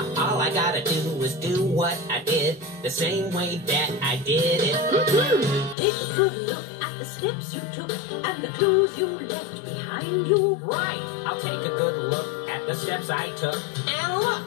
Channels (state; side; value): drops out; right; at 5.8 s